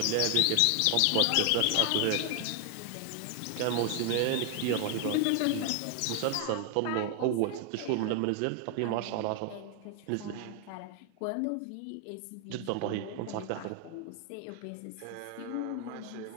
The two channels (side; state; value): both; different; correlation 0.00